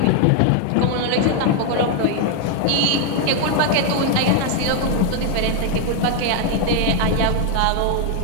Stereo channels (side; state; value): both; different; correlation 0.01